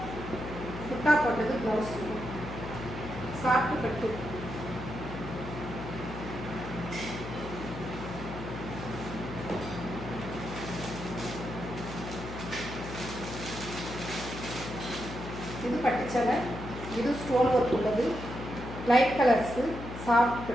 புட்டா போட்டது ப்ளவுஸ். சாஃப்ட் கட்டு. இது பட்டுச்சலை. இது ஸ்டோன் ஒர்க் உள்ளது. லைட் கலர்ஸு சாஃப்ட்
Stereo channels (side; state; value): left; noise; hum, 9 dB below the sound